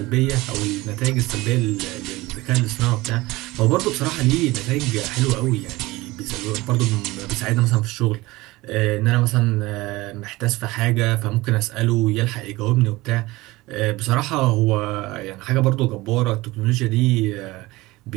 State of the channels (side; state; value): left; quieter; 20.2 dB